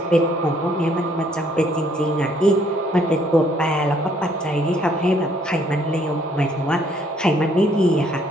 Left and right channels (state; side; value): normal; both; correlation 0.65